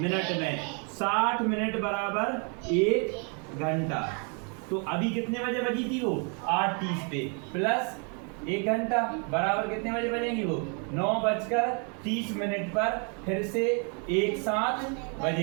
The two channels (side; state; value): left; quieter; 37.6 dB